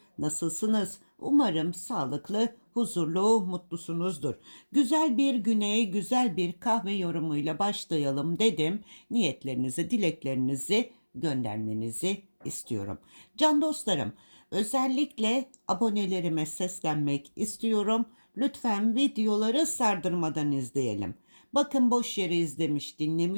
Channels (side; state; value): both; inverted; correlation -1.00